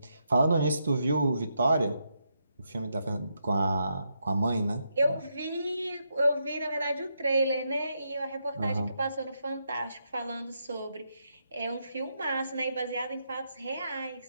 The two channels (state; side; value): inverted; both; correlation -0.81